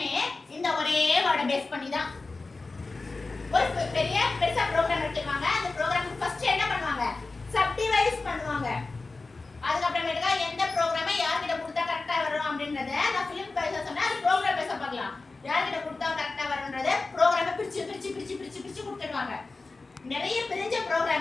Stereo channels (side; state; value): right; quieter; 3.6 dB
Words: இந்த ஒரே வேர்டை பேஸ் பண்ணி தான். ஒரு பெருசா ப்ரோக்ராம் எடுத்துவாங்க. அந்த ப்ரோக்ராமுக்கு ஃபர்ஸ்ட் என்ன பண்ணுவாங்க? சப்டிவைஸ் பண்ணுவாங்க. அதுக்கப்புறமேட்டுக்கா எந்த ப்ரோக்ராமை யார்கிட்ட கொடுத்தா கரெக்டா வரும் அப்படின்றத நான் ஃபிலிம் பேச சொன்னா அது ப்ரோக்ராம் பேச பார்க்கலாம். யார்கிட்ட கொடுத்தா கரெக்டா வரும்ன்றத ப்ரோக்ராமை பிரிச்சு கொடுத்துடுவாங்க. நிறைய பிரிஞ்ச